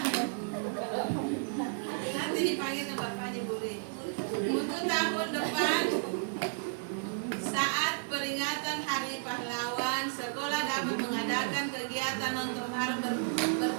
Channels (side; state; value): left; silent; digital silence